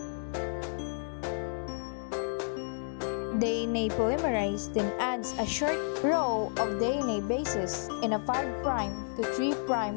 DNA polymerase then adds a short row of DNA bases in a 5' to 3'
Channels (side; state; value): right; silent; digital silence